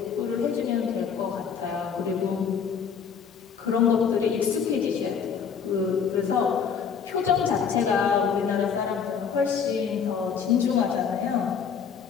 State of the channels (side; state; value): right; quieter; 6.8 dB